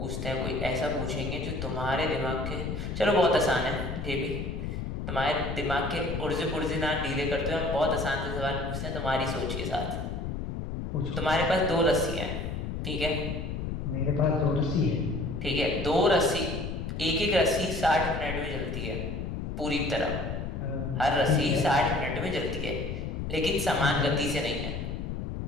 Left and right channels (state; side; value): noise; left; rumble, 4 dB below the sound